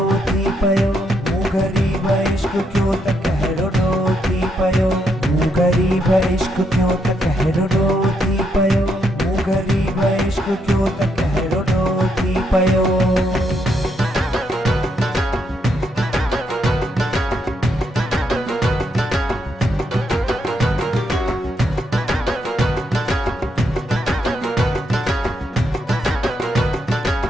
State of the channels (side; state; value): both; normal; correlation 0.78